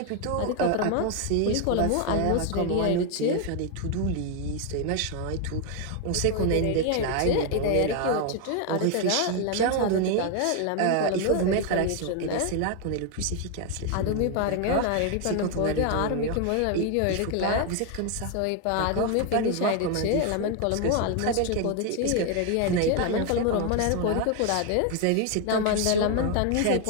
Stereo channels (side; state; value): both; different; correlation 0.01